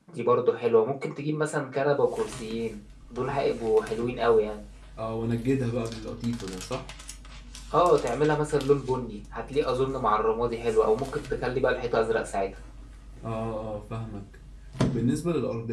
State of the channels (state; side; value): identical; both; correlation 1.00